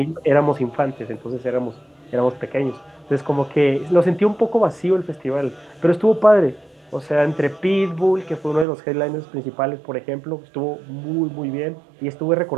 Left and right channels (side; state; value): left; drops out; at 8.7 s